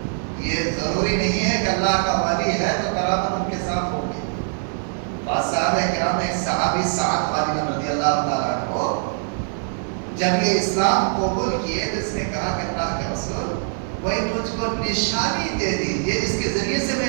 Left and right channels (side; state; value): left; silent; 64 dB below the other